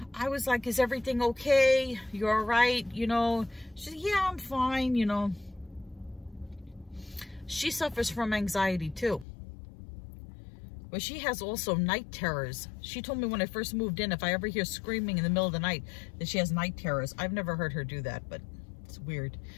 I was like, is everything okay? You're all right? You know, she said, yeah, I'm fine. You know, she suffers from anxiety too. But she has also night terrors. She told me when I first moved in, if I ever hear screaming in the middle of the night, that she has night terrors. I've never heard her do that, but it's weird.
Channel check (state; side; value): drops out; right; at 9.2 s